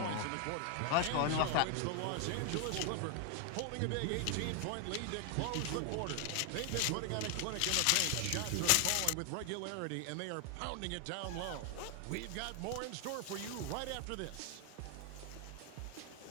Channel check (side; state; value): both; different; correlation 0.00